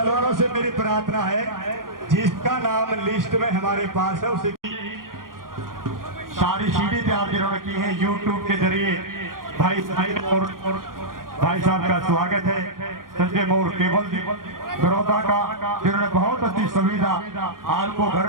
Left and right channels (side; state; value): left; late; 0.91 ms